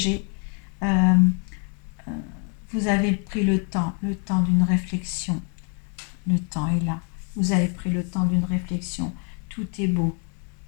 Vous avez pris le temps d'une réflexion. Le temps est là. Vous avez pris le temps d'une réflexion. Tout est beau.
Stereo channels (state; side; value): quieter; right; 38.0 dB